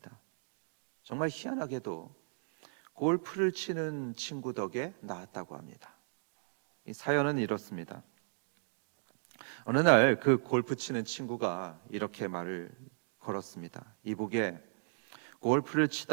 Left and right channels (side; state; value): left; silent; digital silence